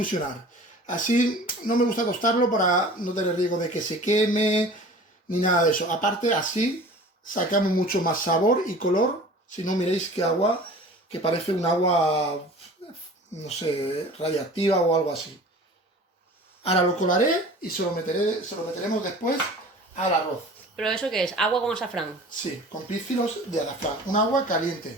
Así no me gusta tostarlo para no tener riesgo de que se queme, ni nada de eso. Aparte, así sacamos mucho más sabor y color, si no miréis qué agua, que parece un agua, no sé, radiactiva o algo así. Ahora lo colaré y se lo meteremos después al arroz. ¿Pero eso qué es? ¿Agua con azafrán? Sí, con pícilos de azafrán. Un agua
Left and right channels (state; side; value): normal; both; correlation 0.42